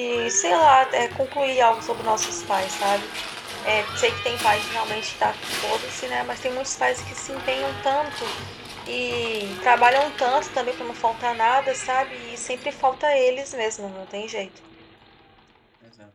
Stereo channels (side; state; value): both; identical; correlation 1.00